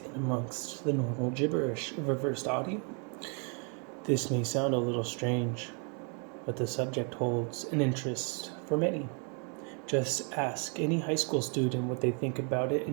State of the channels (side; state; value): left; quieter; 38.3 dB